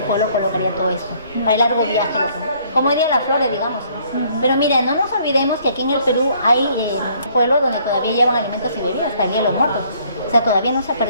colocaría todo esto, para el largo viaje. Como dirían las flores, digamos. Pero mira, no nos olvidemos que aquí en el Perú hay pueblos donde todavía llevan alimentos y bebidas, también los muertos. O sea, todavía no se ha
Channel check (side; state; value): both; inverted; correlation -0.62